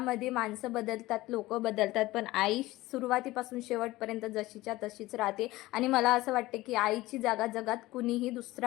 माणसं बदलतात, लोक बदलतात, पण आई सुरुवातीपासून शेवटपर्यंत जशीच्या तशीच राहते. आणि मला असं वाटते की आईची जागा जगात कुणीही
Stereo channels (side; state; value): right; quieter; 18.3 dB